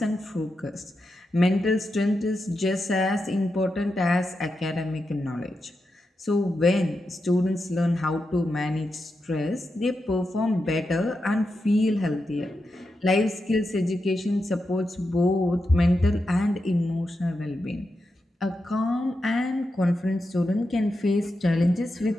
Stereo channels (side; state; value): both; normal; correlation 0.88